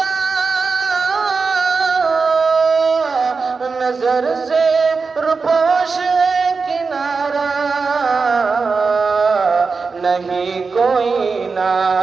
نظر سے روپوش کنارہ نہیں کوئی نہ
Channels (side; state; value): left; quieter; 4.7 dB